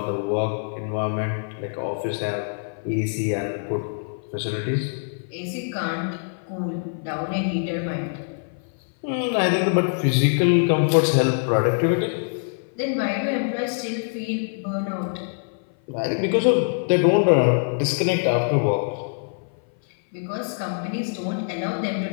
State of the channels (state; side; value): silent; right; 57 dB below the other